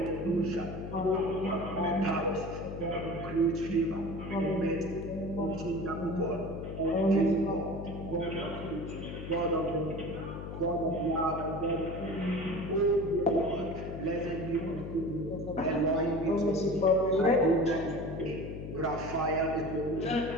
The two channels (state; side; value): noise; left; hum, 8 dB below the sound